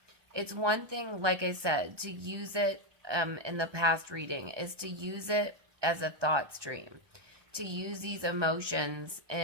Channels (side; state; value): left; late; 1.2 ms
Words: It's one thing, like I said, to use it in the past reading, is to use it as a thought stream. to use these emotions